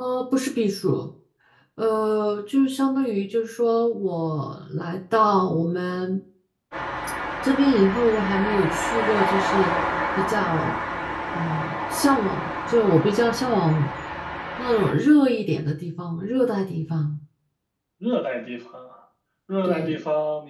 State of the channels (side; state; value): both; identical; correlation 1.00